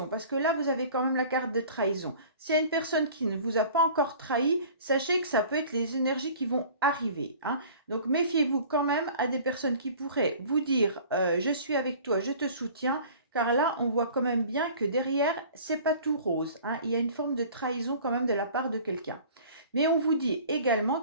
parce que là, vous avez quand même la carte de trahison. S'il y a une personne qui ne vous a pas encore trahi, sachez que ça peut être les énergies qui vont arriver, hein. Donc, méfiez-vous quand même à des personnes qui pourraient vous dire je suis avec toi, je te soutiens. Car là, on voit quand même bien que derrière, c'est pas tout rose, hein. Il y a une forme de trahison quand même de la part de quelqu'un. Mais on vous dit également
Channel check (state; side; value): inverted; both; correlation -0.46